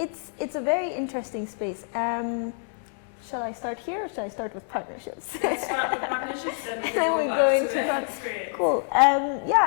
a very interesting space. Shall I start here or shall I start with partnerships? Let's start with partnerships, then we go into experience. Cool.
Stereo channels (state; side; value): silent; right; 60 dB below the other